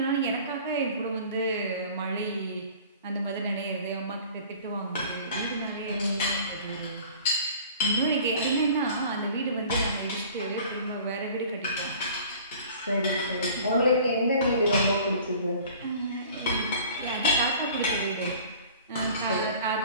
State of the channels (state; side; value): inverted; both; correlation -0.46